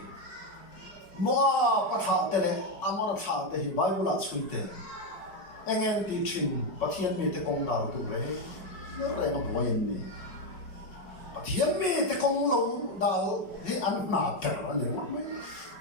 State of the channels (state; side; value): late; right; 5.4 ms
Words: mua bán này anh muốn thà thì bài bút là suy thế anh em đi trình bắt thiên mi te công nào tụ lấy nó lại nó bồi em đi bắt thiên mi te công lâu đào thì ăn nạp trở anh nhớ mấy